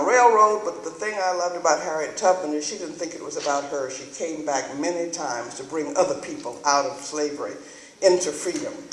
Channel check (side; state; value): both; identical; correlation 1.00